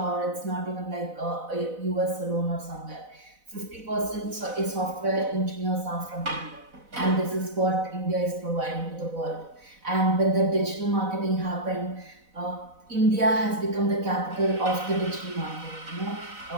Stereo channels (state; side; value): late; left; 4.0 ms